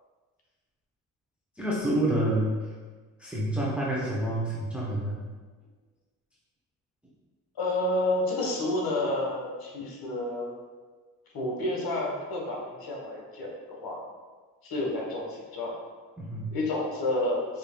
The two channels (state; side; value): normal; both; correlation 0.35